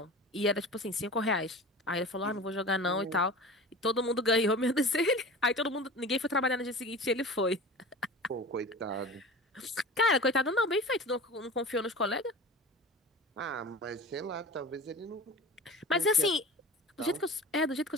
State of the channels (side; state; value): both; normal; correlation 0.35